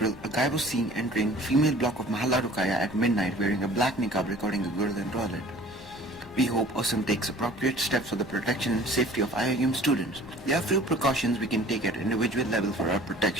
a guy was seen entering female block of Mahalla Rukaya at midnight wearing a black niqab recording a girl in toilet. We hope Awesome takes appropriate steps for the protection and safety of IIUM students. There are few precautions we can take at individual level for our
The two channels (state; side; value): noise; left; rumble, 23 dB below the sound